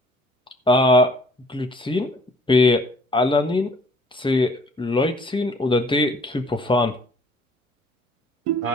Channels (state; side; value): normal; both; correlation 0.56